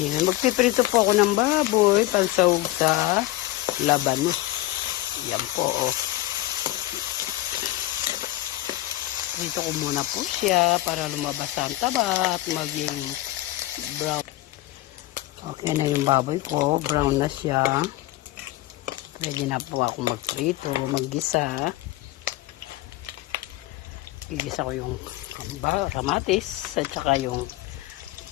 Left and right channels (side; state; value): right; quieter; 17.2 dB